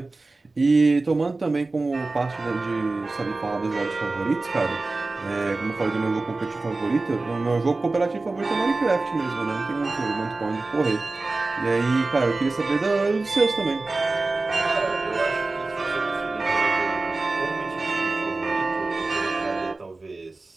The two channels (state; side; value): quieter; left; 3.4 dB